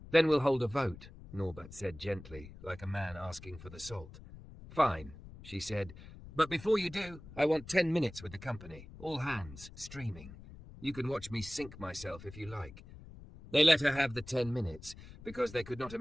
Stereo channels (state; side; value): noise; left; rumble, 16 dB below the sound